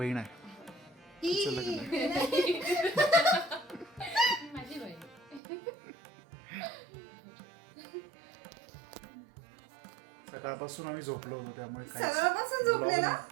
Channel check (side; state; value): left; drops out; at 5.4 s